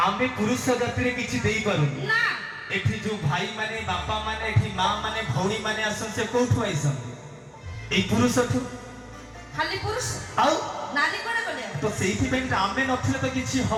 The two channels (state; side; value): identical; both; correlation 1.00